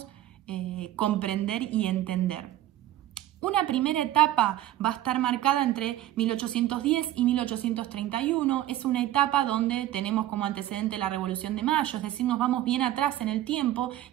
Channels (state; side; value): quieter; left; 13.7 dB